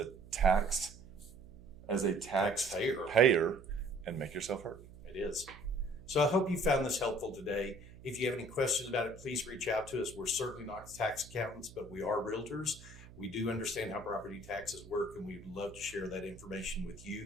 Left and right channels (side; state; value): right; noise; hum, 19 dB below the sound